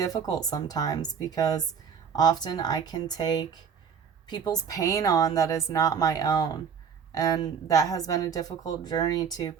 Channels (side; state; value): left; quieter; 7.0 dB